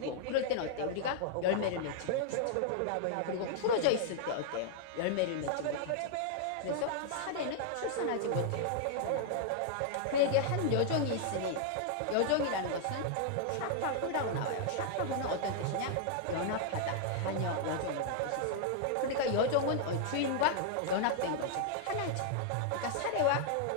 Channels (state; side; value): different; both; correlation -0.01